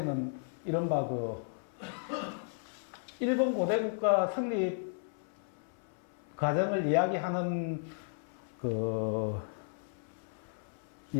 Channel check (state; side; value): silent; right; 55 dB below the other